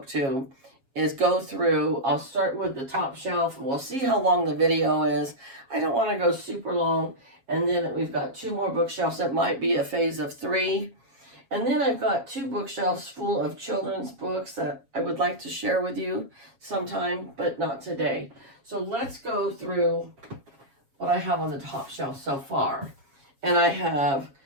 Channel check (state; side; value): late; left; 7.3 ms